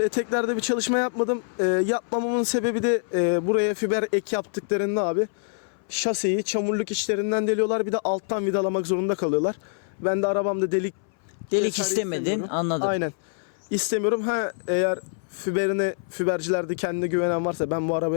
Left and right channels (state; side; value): silent; right; 62 dB below the other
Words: eteklerde bir çalışma yapmadım. Yapmamamın sebebi de buraya fiber ek yaptıklarında abi şaseyi çamurluk içlerinden deliyorlar. Bir de alttan vidalamak zorunda kalıyorlar. Ben de arabamda delik vesaire istemedin, istemiyorum. anladım. Aynen. İstemiyorum. Eğer fibercilerde kendine güvenen varsa ben bu